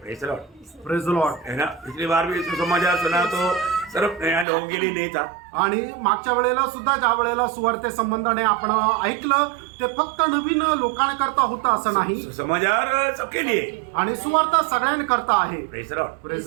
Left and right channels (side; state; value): left; drops out; at 4.5 s